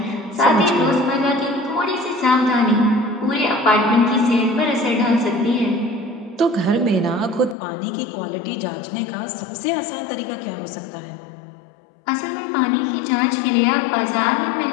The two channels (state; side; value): drops out; right; at 7.6 s